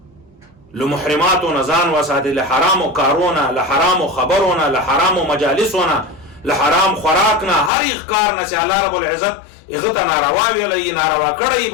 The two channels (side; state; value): right; drops out; at 7.7 s